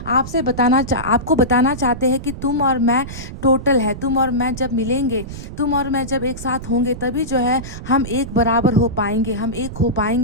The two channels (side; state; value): right; noise; rumble, 10 dB below the sound